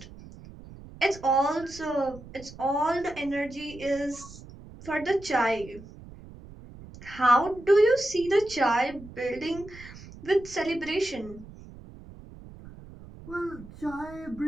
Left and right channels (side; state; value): right; noise; rumble, 17 dB below the sound